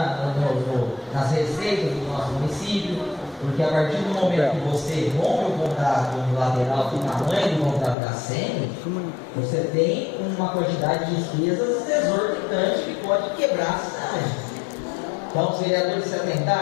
nas receitas do nosso município, porque a partir do momento que você rompe o contrato unilateral do tamanho do contrato da ACM, você tem uma quantidade de despesas exorbitante que pode quebrar a cidade. Então os vereadores se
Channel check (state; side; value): drops out; right; at 8.0 s